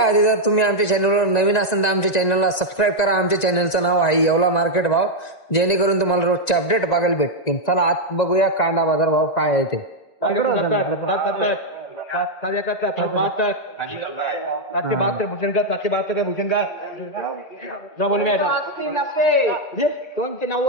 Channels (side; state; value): right; late; 1.9 ms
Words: आधी जर तुम्ही आमच्या चॅनलवर नवीन असाल तर आमच्या चॅनलला सबस्क्राईब करा. आमच्या चॅनलचं नाव आहे येवला मार्केट भाव, जेणेकरून तुम्हाला रोजचे अपडेट बघायला भेटतील. चला आज बघूया कांदा बाजार भाव काय आहे ते. 772 भूषण का 772 का भूषण का ना बोल मी